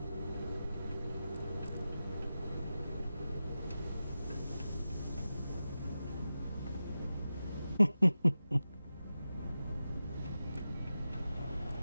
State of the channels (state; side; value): inverted; both; correlation -0.92